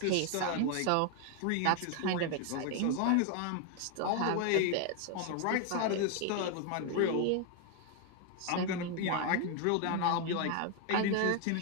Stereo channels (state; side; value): different; both; correlation 0.00